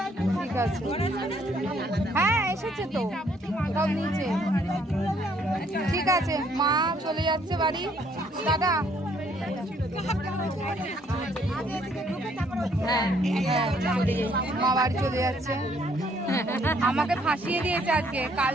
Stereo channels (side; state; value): both; normal; correlation 0.66